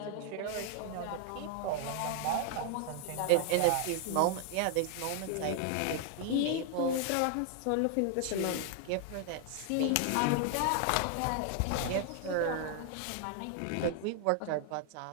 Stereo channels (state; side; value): different; both; correlation 0.00